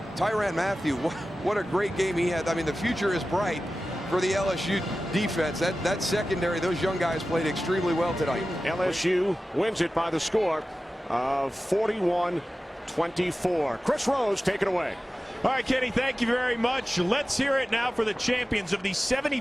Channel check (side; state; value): both; normal; correlation 0.95